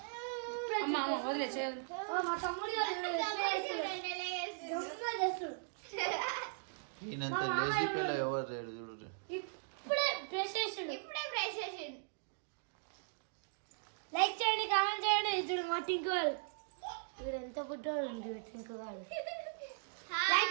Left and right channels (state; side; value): silent; left; digital silence